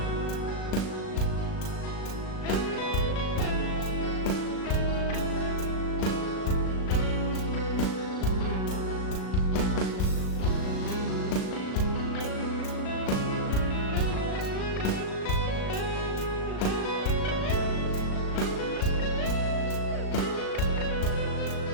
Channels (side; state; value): right; late; 37 ms